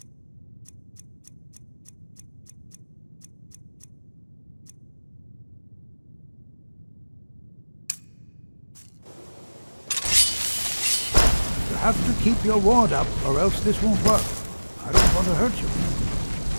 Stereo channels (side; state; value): both; inverted; correlation -1.00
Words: You have to keep your ward up, or else this won't work. I don't want to hurt you.